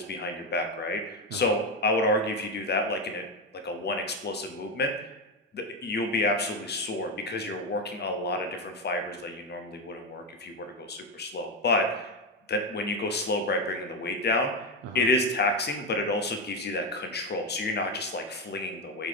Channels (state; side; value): normal; both; correlation 0.11